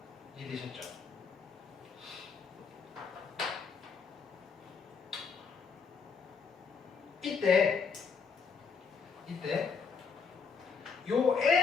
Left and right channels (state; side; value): quieter; right; 5.5 dB